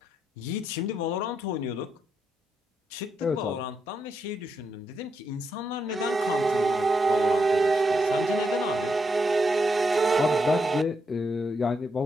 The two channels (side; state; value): both; normal; correlation 0.81